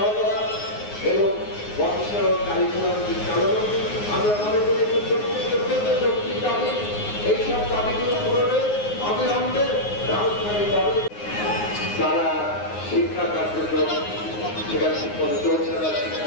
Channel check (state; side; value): late; right; 9.6 ms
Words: করা এবং বংশের কারিকুলাম চালানো, আমরা মনে করি যৌক্তিক দাবি। এইসব দাবিগুলো পূরণে অবিলম্বে ব্যবস্থা নিতে হবে। তারা শিক্ষা কার্যক্রম সেখানে ঠিকমতো চলছে না,